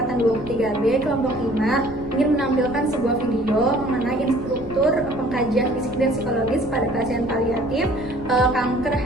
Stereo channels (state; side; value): noise; left; rumble, 16 dB below the sound